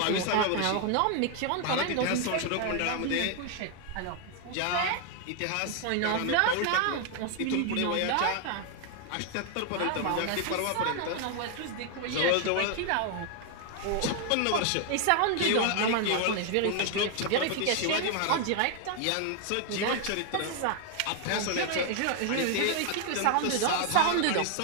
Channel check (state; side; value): different; both; correlation 0.00